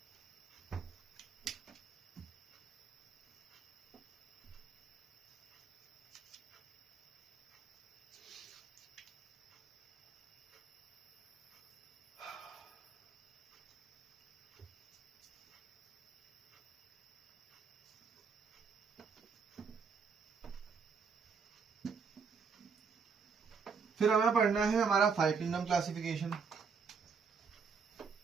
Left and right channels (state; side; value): quieter; left; 5.6 dB